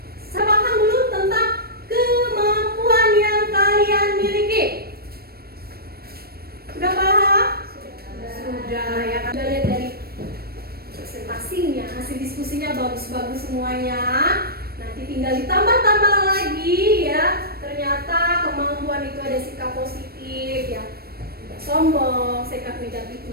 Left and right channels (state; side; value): late; left; 0.45 ms